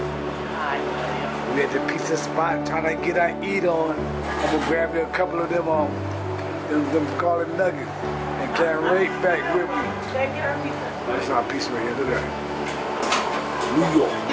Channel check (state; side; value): identical; both; correlation 1.00